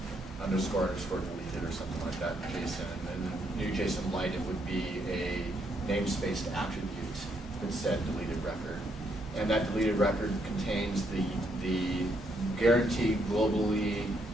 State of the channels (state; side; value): normal; both; correlation 0.75